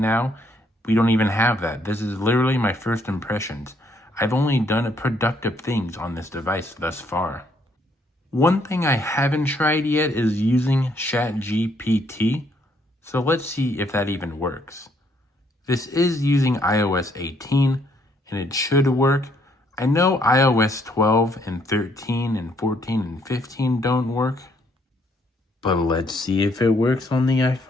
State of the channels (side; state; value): both; normal; correlation 0.69